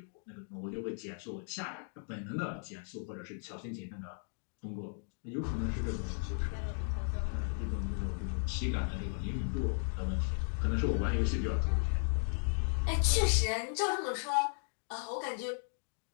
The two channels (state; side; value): silent; right; 54 dB below the other